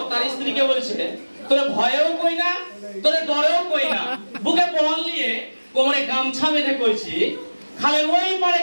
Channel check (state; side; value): inverted; both; correlation -1.00